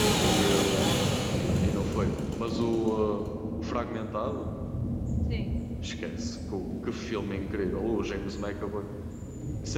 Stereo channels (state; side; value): identical; both; correlation 1.00